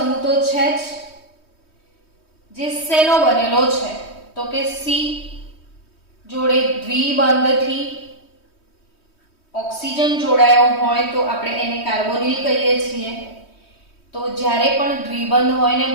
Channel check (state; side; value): late; right; 3.2 ms